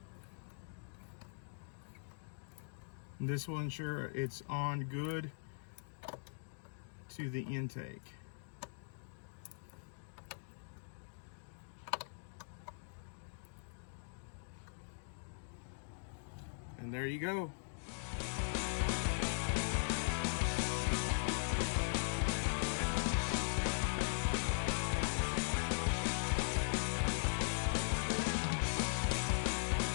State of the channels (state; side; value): silent; right; digital silence